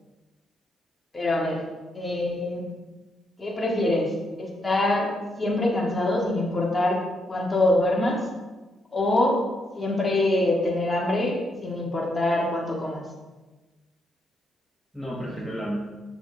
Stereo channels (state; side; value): normal; both; correlation 0.78